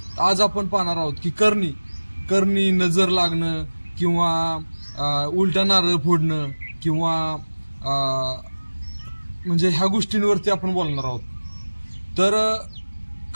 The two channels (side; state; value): both; inverted; correlation -1.00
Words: आज आपण पाहणार आहोत की करणी नजर लागणं किंवा उलटा नारळ फोडणं किंवा म्हणजे ह्या गोष्टींवरती आपण बोलणार आहोत. तर